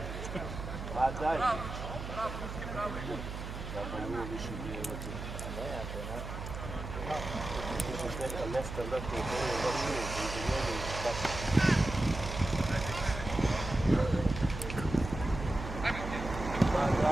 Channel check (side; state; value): right; noise; hum, 7 dB below the sound